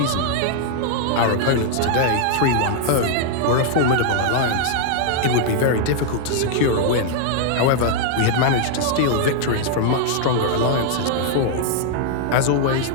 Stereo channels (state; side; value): different; both; correlation 0.00